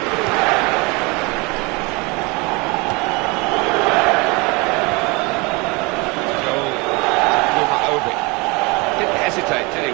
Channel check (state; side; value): quieter; left; 27.2 dB